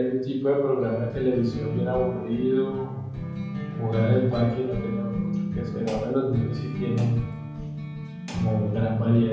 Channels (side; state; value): both; identical; correlation 1.00